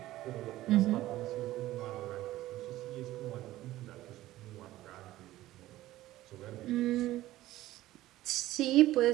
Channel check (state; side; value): quieter; left; 15.7 dB